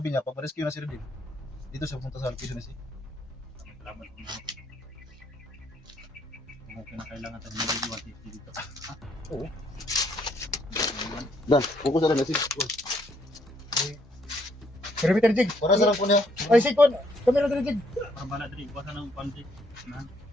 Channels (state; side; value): normal; both; correlation 0.70